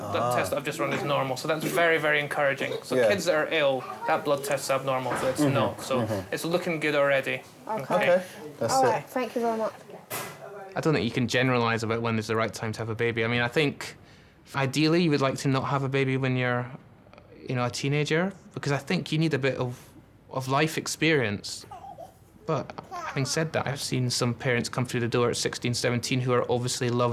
test that I've just run is normal, so that's very, very encouraging. So kids that are ill, that blood test's abnormal, so it's not. So it's looking good already. Okay. That's All it. right, thank you very much. I don't think you can generalise about when is the right time to have a baby. I mean, I think ideally you would like to not have a baby when you're, a teenager, because I think you need a bit of life experience. But having said that, I've seen some parents come through the door at 16, 17 who are obviously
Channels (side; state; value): both; identical; correlation 1.00